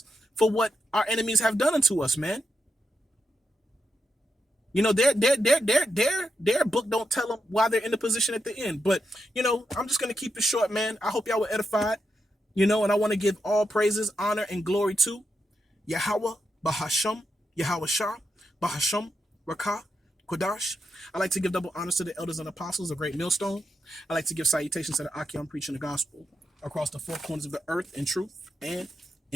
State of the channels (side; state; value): both; normal; correlation 0.84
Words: for what our enemies have done unto us, man. Their book don't tell them why they're in the position at the end. But, I'm just going to keep it short, man. I hope y'all were edified, and I want to give all praises, honor, and glory to Yahweh, Bahasham, Yahweh Shah, Bahasham, Rakah, Kodash. I like to give double honors to the elders and apostles, a great millstone. I like to give salutations to the Akim preaching the gospel across the four corners of the earth in truth and